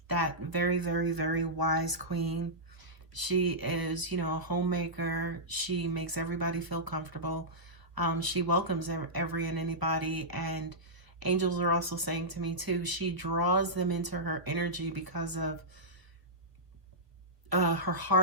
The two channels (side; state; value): left; late; 1.2 ms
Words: that very, very, very wise queen. She is, you know, a homemaker. She makes everybody feel comfortable. She welcomes every and anybody, and angels are also saying to me too, she draws them into her energy because of her